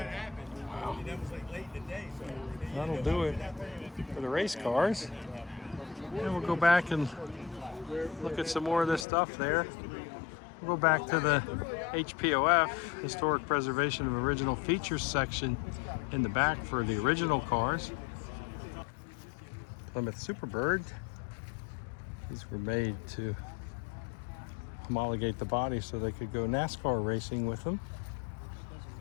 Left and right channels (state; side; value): drops out; right; at 9.1 s